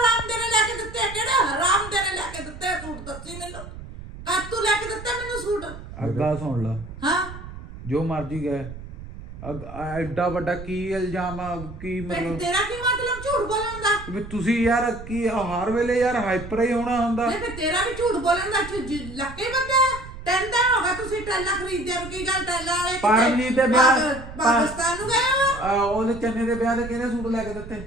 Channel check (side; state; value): right; noise; rumble, 13 dB below the sound